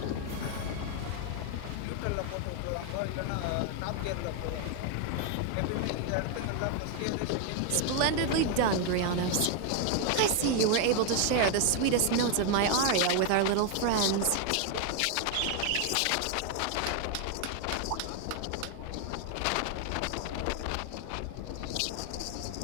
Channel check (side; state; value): both; different; correlation 0.01